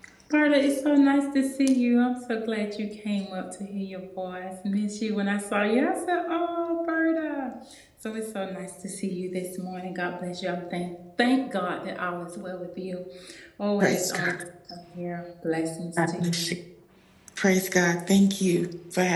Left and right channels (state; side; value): identical; both; correlation 1.00